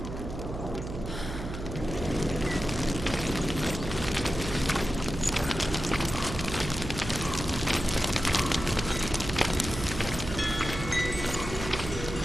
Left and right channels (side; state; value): right; noise; hum, 7 dB below the sound